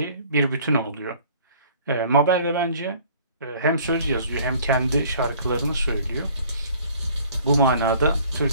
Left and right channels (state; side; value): inverted; both; correlation -0.53